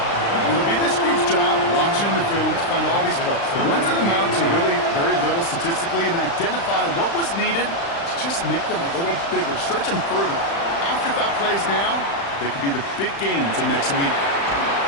It'll be this group's job watching the film to find all these plays. The ones that amount to really very little statistically and identify what was needed to just make them a little bigger, stretch them further. Afterthought plays now, they could be the big gains of next week.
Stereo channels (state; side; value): late; right; 35 ms